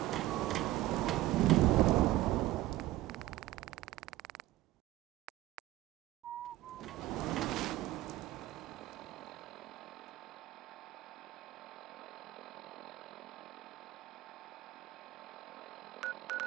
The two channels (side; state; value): left; quieter; 16.1 dB